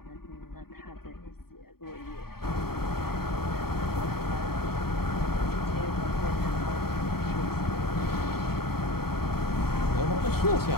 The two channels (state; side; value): late; right; 0.95 ms